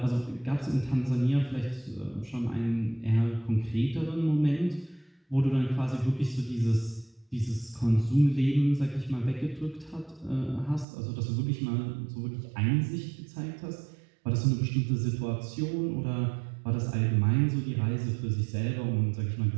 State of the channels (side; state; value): left; drops out; at 10.9 s